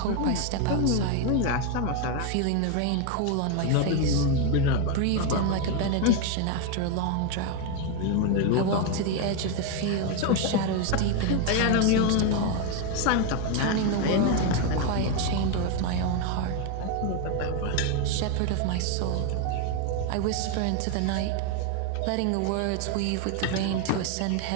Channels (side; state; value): both; different; correlation 0.01